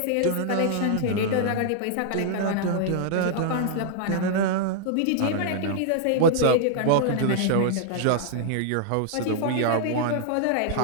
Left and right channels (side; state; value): both; different; correlation -0.01